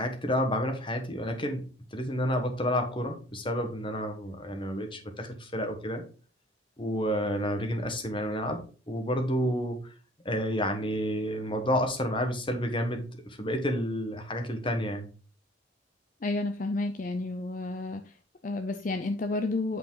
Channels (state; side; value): normal; both; correlation 0.53